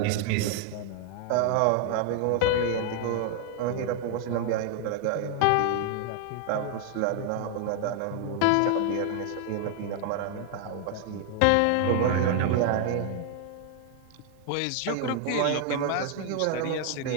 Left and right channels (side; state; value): both; different; correlation 0.00